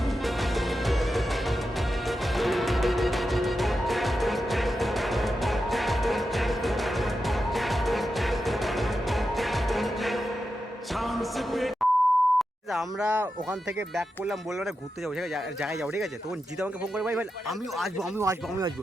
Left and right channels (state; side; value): normal; both; correlation 0.89